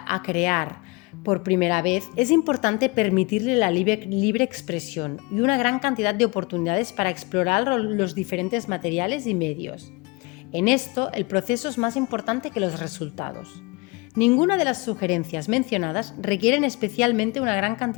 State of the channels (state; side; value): quieter; right; 26.8 dB